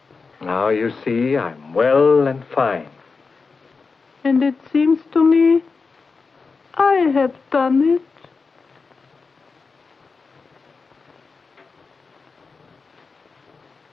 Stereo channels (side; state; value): right; quieter; 4.6 dB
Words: Now you see, I'm well and fine. And it seems to me I have done it.